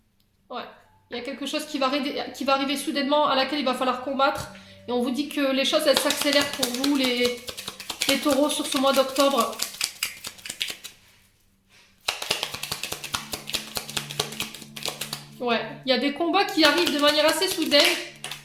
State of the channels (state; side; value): identical; both; correlation 1.00